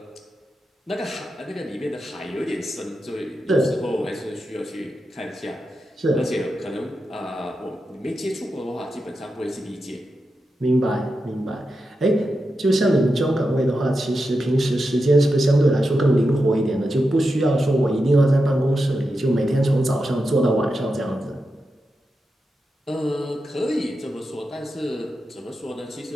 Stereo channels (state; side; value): normal; both; correlation 0.89